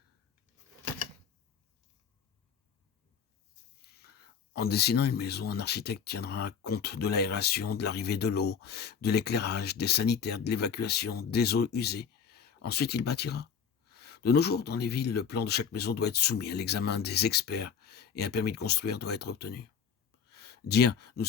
En dessinant une maison, un architecte tiendra compte de l'aération, de l'arrivée de l'eau, de l'éclairage, des sanitaires, de l'évacuation, des eaux usées. Ensuite, il bâtira. De nos jours, dans les villes, le plan de chaque maison doit être soumis à l'examen des experts et un permis de construire doit être obtenu. Dire « nous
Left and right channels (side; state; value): right; quieter; 7.0 dB